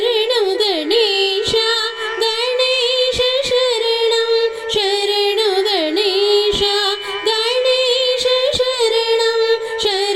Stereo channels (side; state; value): both; identical; correlation 1.00